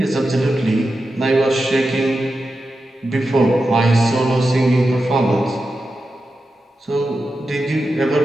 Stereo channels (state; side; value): normal; both; correlation 0.90